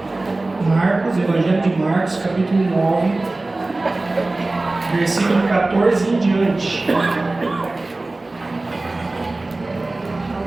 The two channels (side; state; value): left; quieter; 3.0 dB